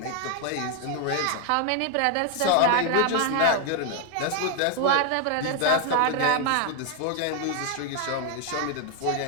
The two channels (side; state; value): both; different; correlation 0.00